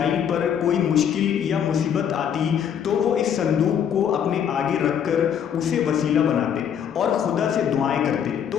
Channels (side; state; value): right; quieter; 8.6 dB